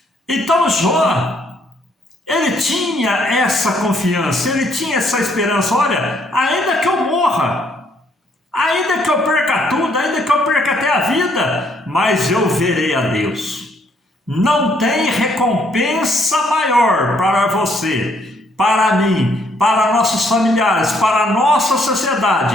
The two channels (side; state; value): both; normal; correlation 0.69